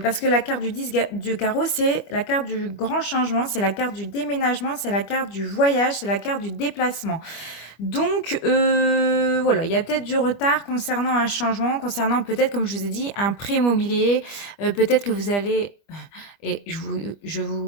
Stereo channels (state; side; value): late; right; 25 ms